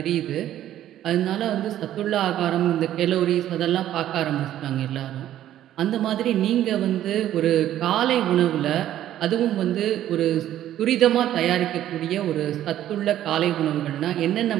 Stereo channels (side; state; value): left; quieter; 12.2 dB